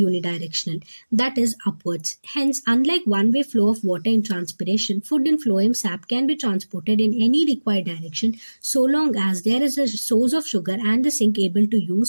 unidirectional, that is upwards. Hence, unlike one-way flow of water in transpiration, food in phloem sap can be transported in any required direction so long as there is a source of sugar and the sink able to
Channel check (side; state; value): both; inverted; correlation -1.00